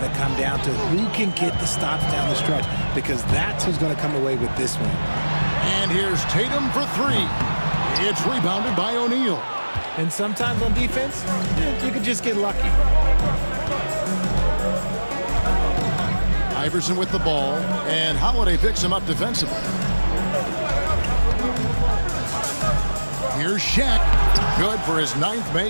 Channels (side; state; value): both; inverted; correlation -1.00